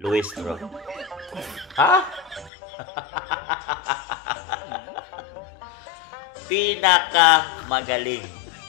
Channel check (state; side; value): drops out; right; at 2.5 s